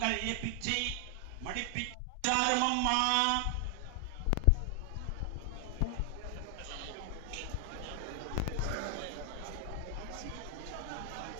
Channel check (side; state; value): both; different; correlation 0.00